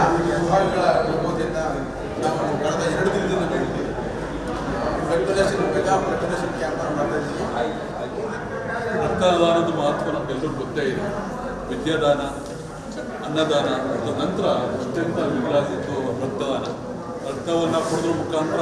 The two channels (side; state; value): both; identical; correlation 1.00